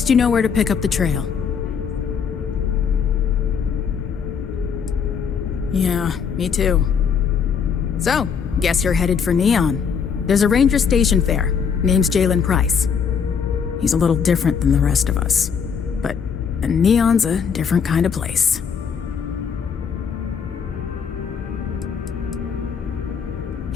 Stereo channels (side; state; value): right; quieter; 6.7 dB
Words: you know where to pick up the trail. Yeah, me too. So, guess you're headed for Neon. There's a ranger stationed there. Name's Jalen Price. He's a little different than the rest of us. But Neon's a different kind of place.